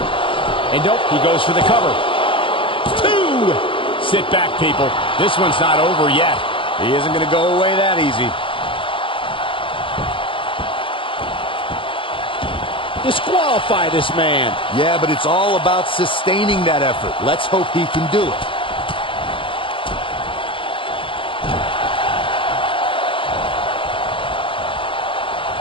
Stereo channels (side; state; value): right; late; 0.25 ms